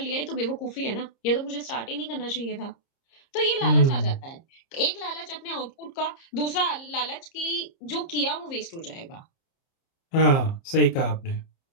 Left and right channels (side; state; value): right; late; 30 ms